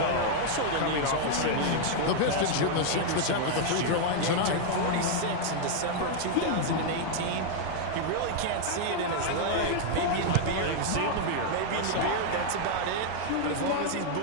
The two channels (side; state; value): both; different; correlation 0.00